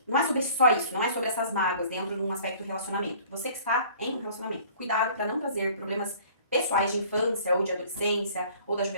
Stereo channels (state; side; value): inverted; both; correlation -0.51